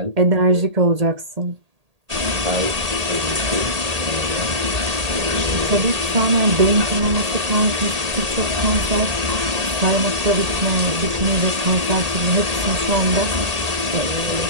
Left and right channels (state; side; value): late; left; 1.8 ms